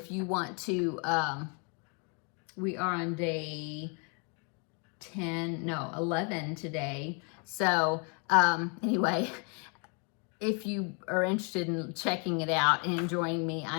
you want to. We are on day 11 today. So anyway, if you are interested in checking it out and joining me, I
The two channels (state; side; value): quieter; right; 36.5 dB